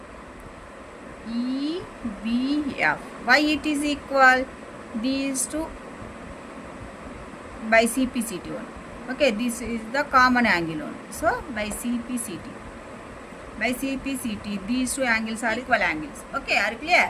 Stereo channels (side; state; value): both; identical; correlation 1.00